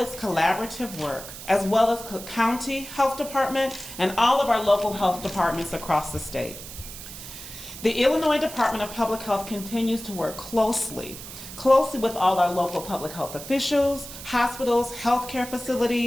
collaborative work, as well as Cook County Health Department and all of our local health departments across the state. The Illinois Department of Public Health continues to work closely with all our local public health officials, hospitals, healthcare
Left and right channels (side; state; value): right; noise; hiss, 12 dB below the sound